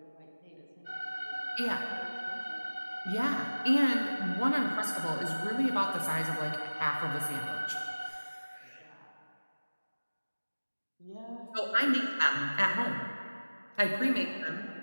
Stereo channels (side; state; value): both; inverted; correlation -1.00